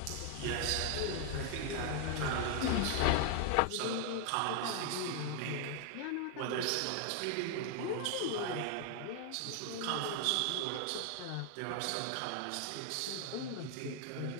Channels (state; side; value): different; both; correlation 0.00